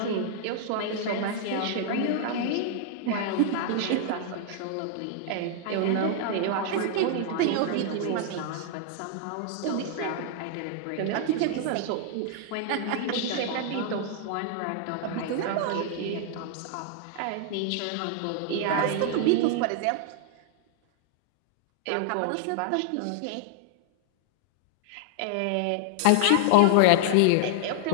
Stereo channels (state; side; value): different; both; correlation -0.01